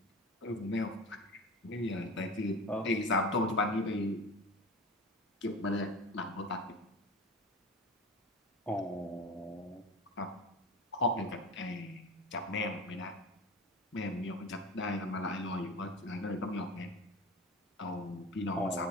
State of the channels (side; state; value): both; normal; correlation 0.33